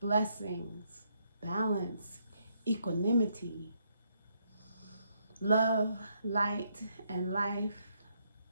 blessings, balance, equanimity, love, light, and life,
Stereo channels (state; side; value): inverted; both; correlation -0.74